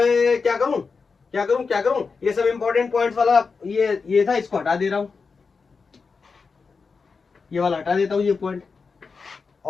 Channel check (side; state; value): right; quieter; 4.9 dB